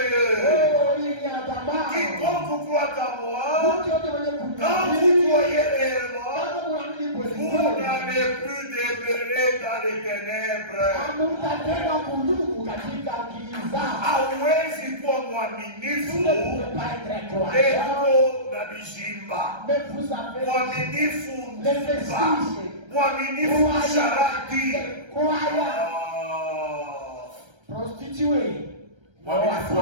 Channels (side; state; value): left; late; 1.3 ms